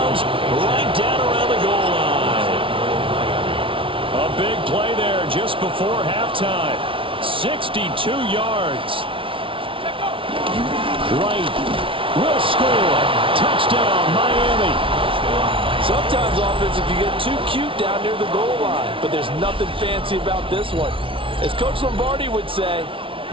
right down around the goal line. A big play there just before halftime. 62 yards. Right. Will score. Touchdown, Miami. Sometimes offense, if you get too cute down near the goal line, but there's nothing fancy about this one. As Coach Lombardi would say,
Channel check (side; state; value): left; late; 0.25 ms